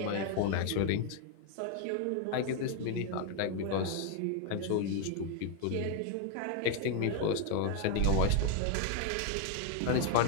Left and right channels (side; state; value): both; different; correlation 0.00